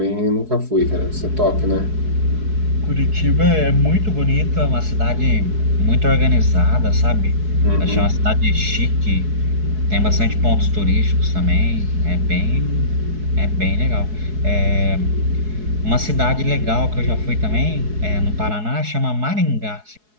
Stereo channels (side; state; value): left; late; 4.7 ms